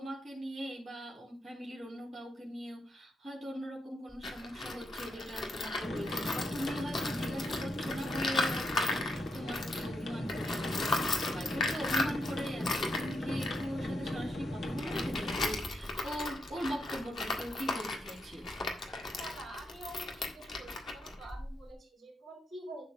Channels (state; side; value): normal; both; correlation 0.81